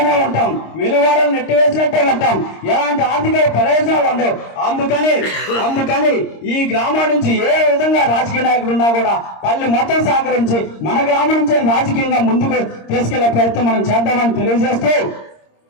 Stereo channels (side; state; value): right; late; 26 ms